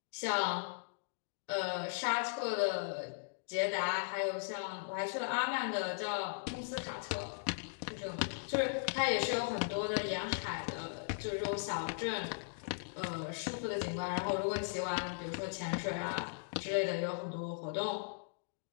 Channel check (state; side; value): silent; right; digital silence